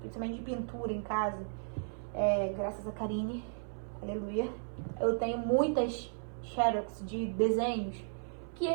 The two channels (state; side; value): silent; left; 55 dB below the other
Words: de pintura em casa. Graças a Karine, aleluia, eu tenho muitas xerox de desenhos que